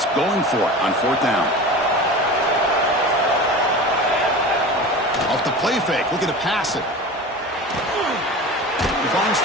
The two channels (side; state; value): both; normal; correlation 0.33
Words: going for it on 4th down. Off the play fake, looking to pass it. He finds